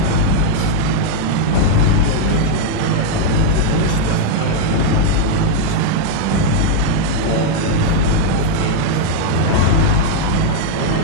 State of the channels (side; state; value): both; different; correlation 0.00